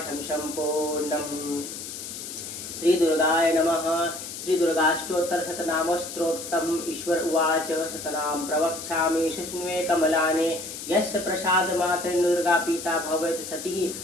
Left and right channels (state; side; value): noise; left; hiss, 9 dB below the sound